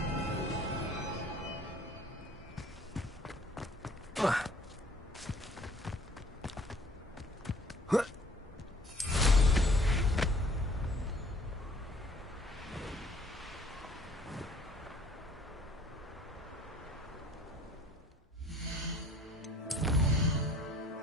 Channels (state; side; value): normal; both; correlation 0.55